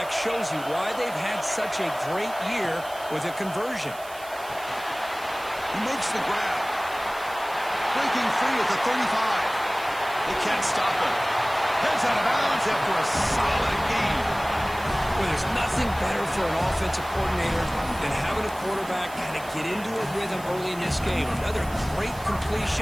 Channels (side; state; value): right; noise; hiss, 18 dB below the sound